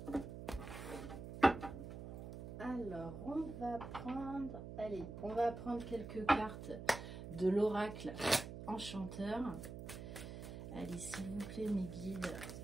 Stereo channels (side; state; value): right; noise; hum, 9 dB below the sound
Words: Alors, on va prendre... Allez, on va prendre quelques cartes de l'oracle enchanteur. Allez, s'il vous plaît, mes guides.